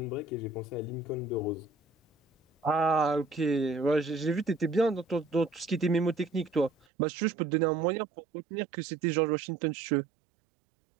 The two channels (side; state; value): left; drops out; at 6.9 s